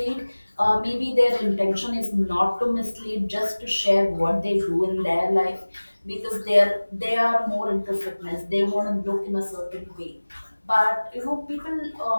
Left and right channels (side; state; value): both; inverted; correlation -1.00